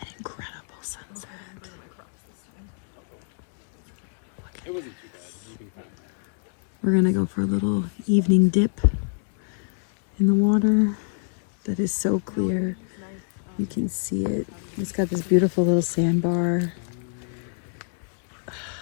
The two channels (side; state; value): right; silent; digital silence